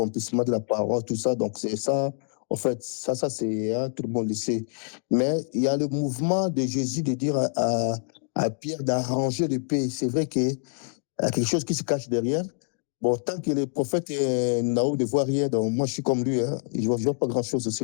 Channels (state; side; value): silent; right; digital silence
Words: de la parole, tout ça, donc c'est ça, en fait, ça c'est, hein, tout le monde le sait. Mais il y a le mouvement de Jésus de dire à Pierre d'arranger le pays. C'est vrai qu'il y a quelque chose qui se cache derrière. Bon, tant que le prophète Naou ne voit rien, donc moi je suis comme lui, hein, je ne vois pas grand-chose